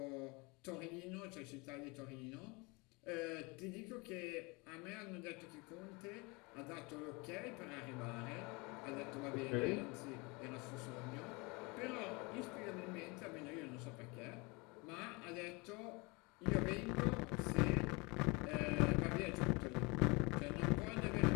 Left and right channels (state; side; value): quieter; right; 27.2 dB